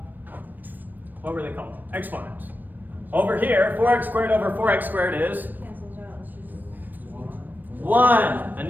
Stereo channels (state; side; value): late; left; 0.089 ms